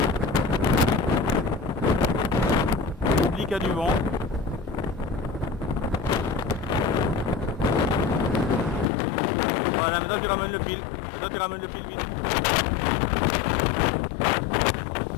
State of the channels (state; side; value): drops out; right; at 8.8 s